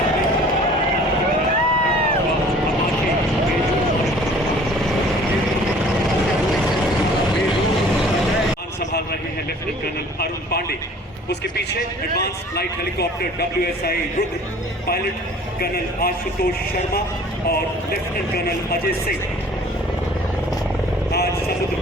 संभाल रहे हैं लेफ्टिनेंट कर्नल अरुण पांडे। उसके पीछे advance flight helicopter WSI Rudra, pilot colonel Ashutosh Sharma और लेफ्टिनेंट कर्नल अजय सिंह। आज समुद्र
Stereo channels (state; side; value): normal; both; correlation 0.50